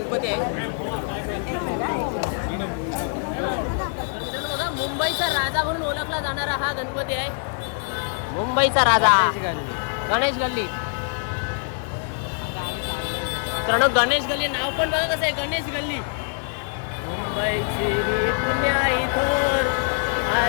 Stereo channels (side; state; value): right; silent; 55 dB below the other